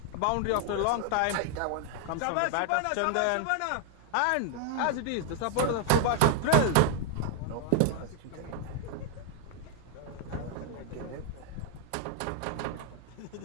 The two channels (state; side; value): different; both; correlation 0.00